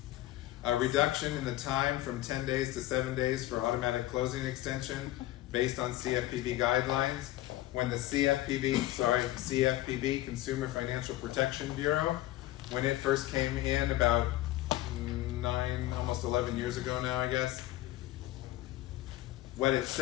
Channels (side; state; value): right; quieter; 15.8 dB